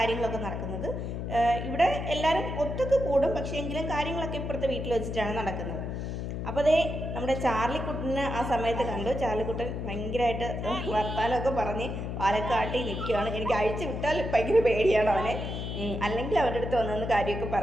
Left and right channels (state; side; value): noise; left; hum, 4 dB below the sound